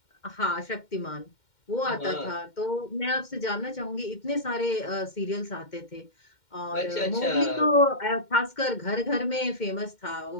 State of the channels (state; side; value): late; right; 2.1 ms